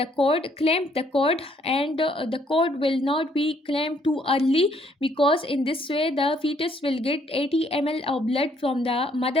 cord, clamp the cord, and the cord will not be clamped too early, because in this way the fetus will get 80 ml of blood from the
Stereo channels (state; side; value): normal; both; correlation 0.67